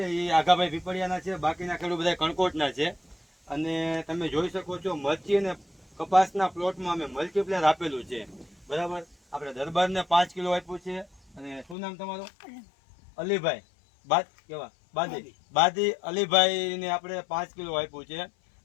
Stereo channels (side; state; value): right; drops out; at 11.8 s